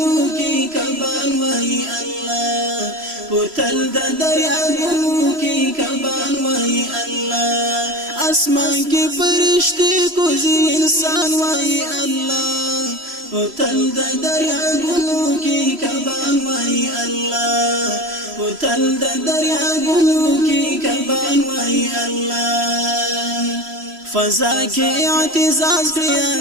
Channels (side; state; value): left; late; 3.0 ms